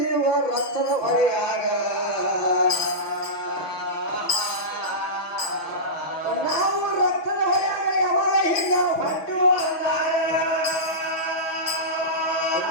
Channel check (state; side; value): late; right; 6.2 ms